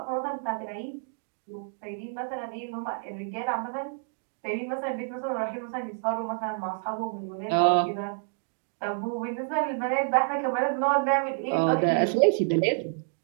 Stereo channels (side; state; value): left; silent; 59 dB below the other